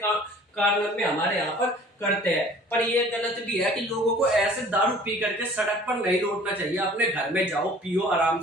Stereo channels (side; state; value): both; normal; correlation 0.49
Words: कारण में हमारे यहाँ पर करते हैं। पर ये गलत भी है कि लोगों को ऐसे दारू पी करके सड़क पर नहीं लौटना चाहिए। अपने घर में जाओ, पियो, आराम